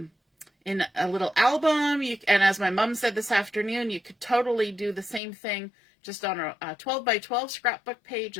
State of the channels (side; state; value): right; drops out; at 5.2 s